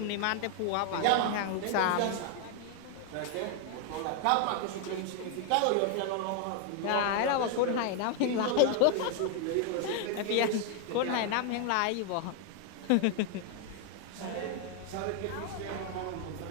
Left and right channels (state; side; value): different; both; correlation 0.00